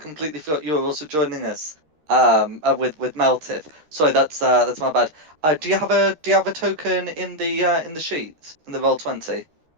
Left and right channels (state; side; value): late; left; 13 ms